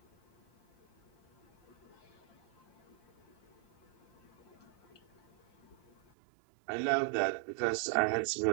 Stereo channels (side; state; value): left; drops out; at 6.0 s